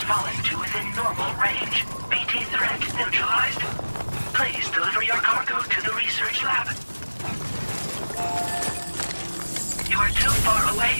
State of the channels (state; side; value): inverted; both; correlation -1.00